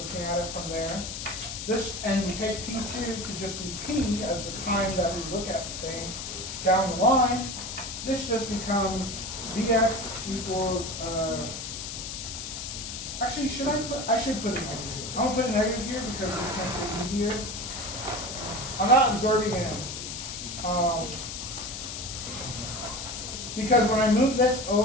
at it from there. This, and we take t2 to just be t as the time that we look at the thing down the line. This just becomes vx equals, actually, I should put a negative here. I'm going to put a negative here because this makes it easier. I'm not absorbing it. Because when I move this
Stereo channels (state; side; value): noise; left; hiss, 7 dB below the sound